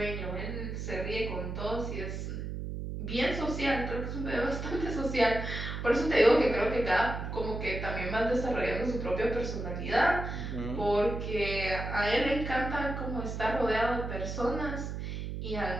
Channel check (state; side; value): noise; right; hum, 5 dB below the sound